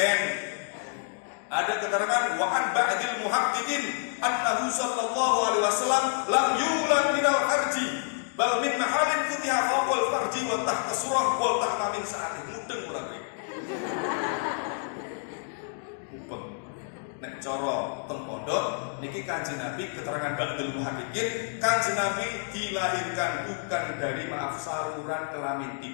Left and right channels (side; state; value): right; silent; digital silence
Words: Ada keterangan wa an ba'dil muhaqqiqin annahu sallallahu alaihi wasallam lam yulad minal farji bal min mahalin futiha fawqal farji wa tahta surah wa tahta min sa'atin mudeng kurang lebih. Nek cara teng pondok niki Kanjeng Nabi keterangan ba'dul muhaqqiqin, Kanjeng Nabi dilahirkan bukan dari saluran kelamin,